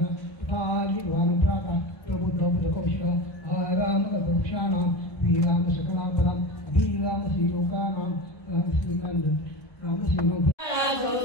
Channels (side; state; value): right; late; 1.2 ms